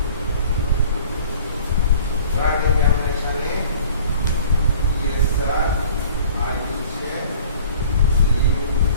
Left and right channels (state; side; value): inverted; both; correlation -0.48